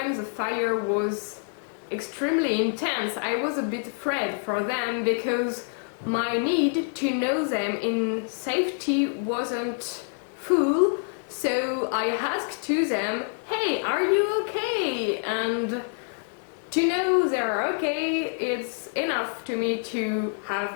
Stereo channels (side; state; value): right; silent; 60 dB below the other